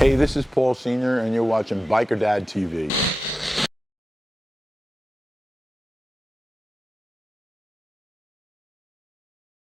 this is Paul Sr., and you're watching Biker Dad TV.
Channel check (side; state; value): both; normal; correlation 0.92